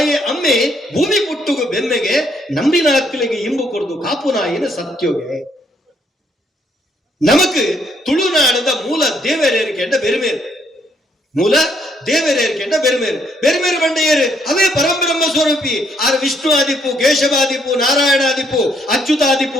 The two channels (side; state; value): both; normal; correlation 0.70